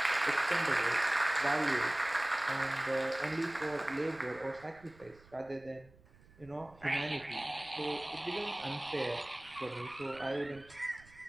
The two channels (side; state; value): right; noise; rumble, 25 dB below the sound